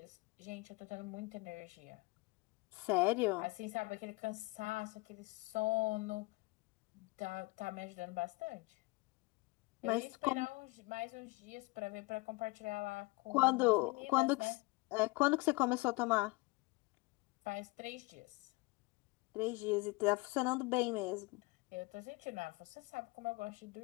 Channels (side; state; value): right; quieter; 24.7 dB